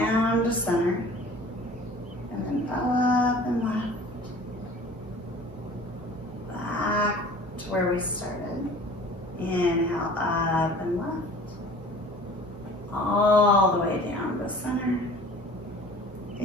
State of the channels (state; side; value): normal; both; correlation 0.46